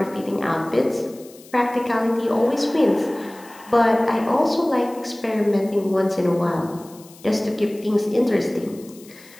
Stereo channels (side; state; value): left; noise; hiss, 23 dB below the sound